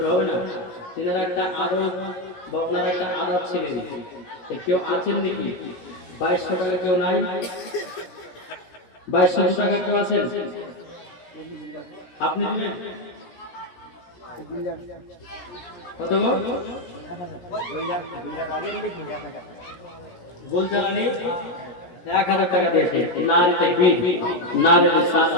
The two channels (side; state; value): right; late; 17 ms